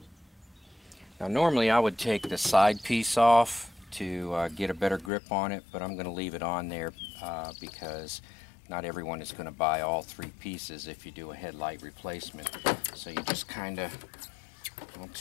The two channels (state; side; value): drops out; right; at 5.1 s